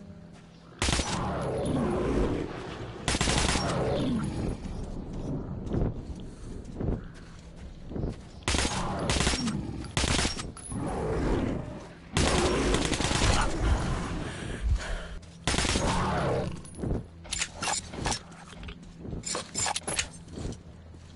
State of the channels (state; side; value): identical; both; correlation 1.00